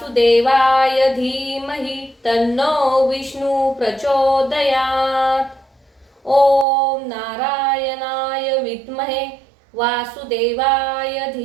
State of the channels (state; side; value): drops out; left; at 6.7 s